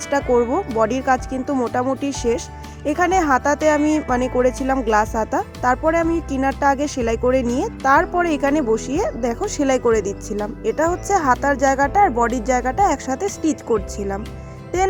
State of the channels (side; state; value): both; identical; correlation 1.00